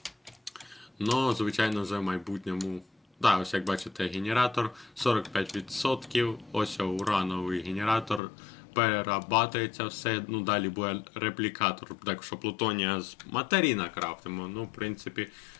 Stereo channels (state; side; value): drops out; right; at 8.2 s